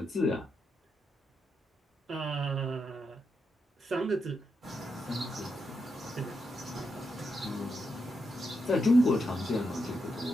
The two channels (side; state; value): both; normal; correlation 0.83